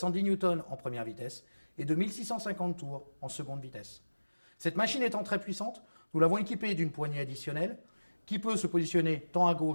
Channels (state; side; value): inverted; both; correlation -1.00